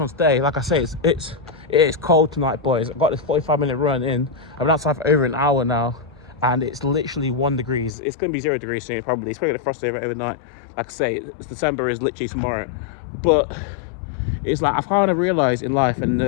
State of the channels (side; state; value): right; drops out; at 7.9 s